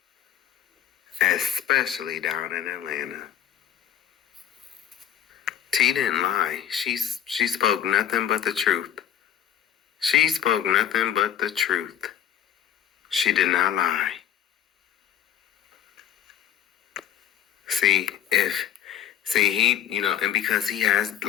T didn't lie. She spoke nothing but the truth. She spoke nothing but the truth. She did not lie. He, and because he has,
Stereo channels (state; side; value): quieter; right; 9.9 dB